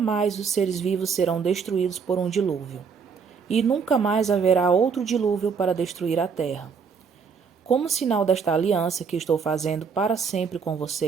os seres vivos serão destruídos por um dilúvio, e nunca mais haverá outro dilúvio para destruir a terra. Como sinal desta aliança que estou fazendo para sempre com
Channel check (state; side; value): quieter; left; 5.9 dB